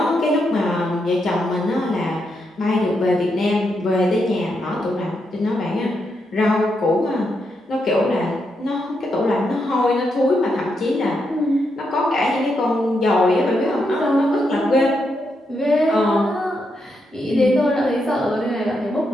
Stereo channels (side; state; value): both; normal; correlation 0.82